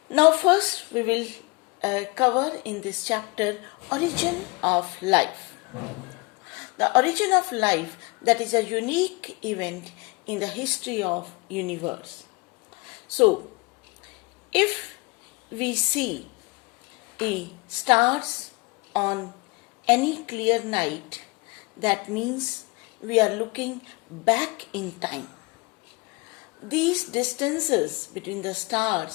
Now first we will cover in this chapter origin of life. The origin of life, that is a unique event in the history of universe. So if we see the stars on any clear night, that means we are looking back in time. These distances between the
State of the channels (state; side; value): quieter; right; 27.0 dB